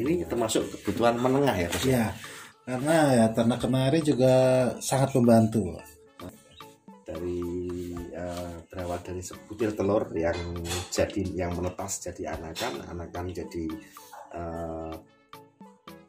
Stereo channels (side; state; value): both; identical; correlation 1.00